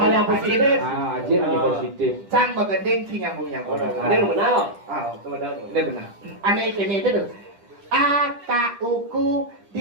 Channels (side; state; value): left; late; 10 ms